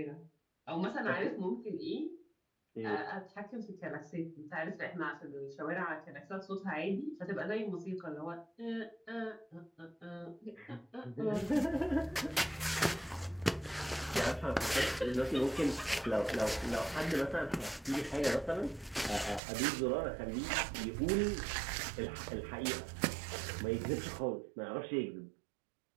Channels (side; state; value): left; drops out; at 19.4 s